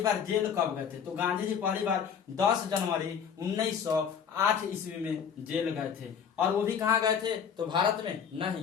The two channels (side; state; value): right; quieter; 7.5 dB